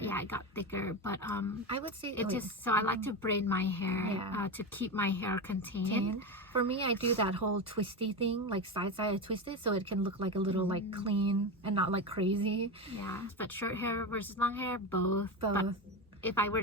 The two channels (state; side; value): normal; both; correlation 0.19